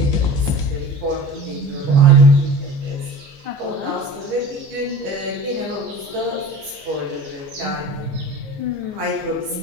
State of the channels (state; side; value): late; left; 15 ms